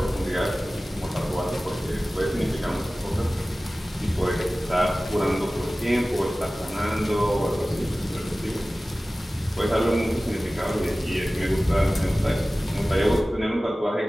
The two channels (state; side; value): normal; both; correlation 0.97